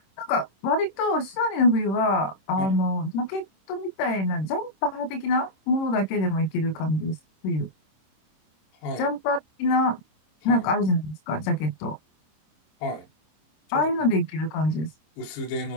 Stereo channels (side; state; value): right; late; 26 ms